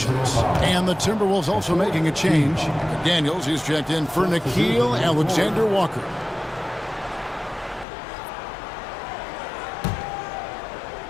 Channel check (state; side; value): drops out; right; at 7.9 s